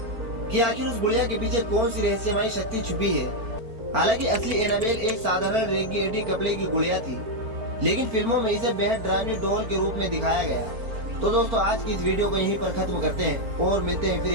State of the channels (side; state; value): left; late; 4.4 ms